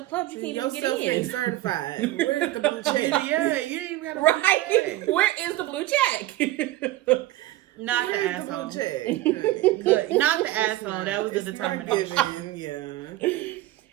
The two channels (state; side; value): quieter; left; 16.2 dB